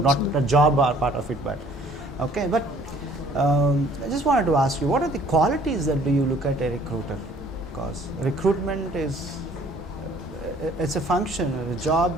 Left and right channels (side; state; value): right; noise; hum, 27 dB below the sound